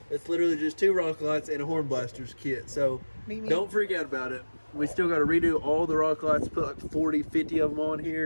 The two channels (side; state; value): both; inverted; correlation -1.00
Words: It's literally just 2 rock lights and a horn blasters kit, so don't freak out about it. We still got to redo all the rock lights, put like 40, 50 of them on